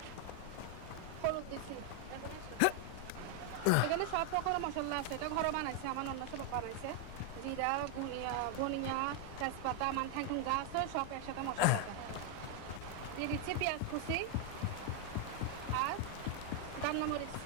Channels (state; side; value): different; both; correlation 0.00